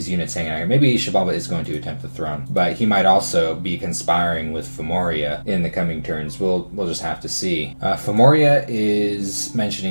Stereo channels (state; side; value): inverted; both; correlation -1.00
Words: units hanging out here. Maybe Shabalba is going to attempt the throne, but he might also be conspiring with Femoria in the coming turns. We'll just have to see. Femoria is